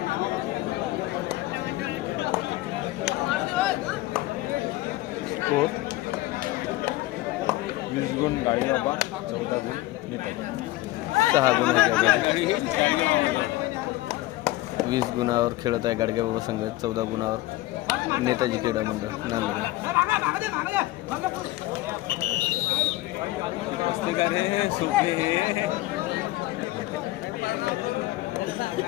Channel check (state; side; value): quieter; right; 17.7 dB